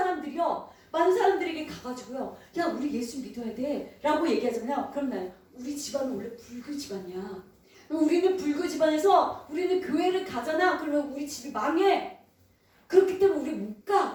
사람들에게 가가지고요, 야, 우리 예수 믿어야 돼 라고 얘기하잖아요. 그럼 나요, 우리 집안은 원래 불교 집안이야. 우리는 불교 집안에서 우리는 교회를 가잖아. 그러면 우리 집이 망해. 그렇기 때문에 우리 못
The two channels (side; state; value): both; identical; correlation 1.00